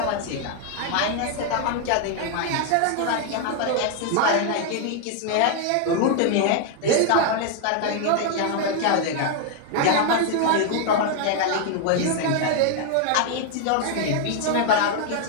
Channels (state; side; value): different; both; correlation 0.00